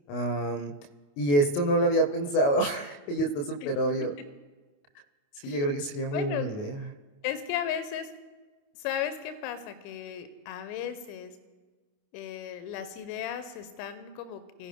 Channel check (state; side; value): late; right; 28 ms